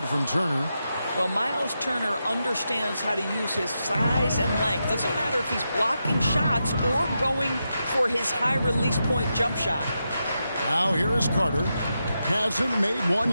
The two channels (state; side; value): inverted; both; correlation -0.87